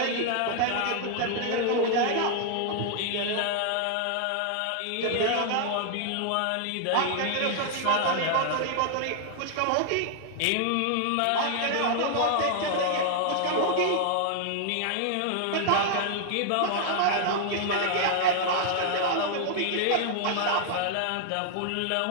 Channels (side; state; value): both; different; correlation 0.00